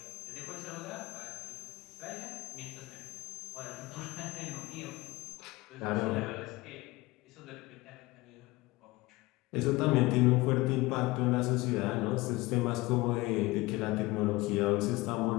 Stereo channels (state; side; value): quieter; right; 21.0 dB